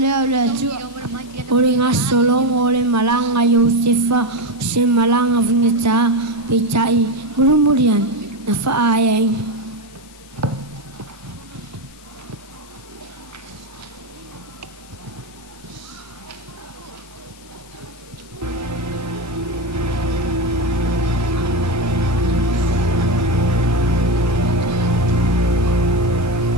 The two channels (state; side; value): noise; left; hiss, 23 dB below the sound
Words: le atua. O le ngā solongo o le malanga Iosefa, se malanga vingata, peitai, murumurian, na whaaiai.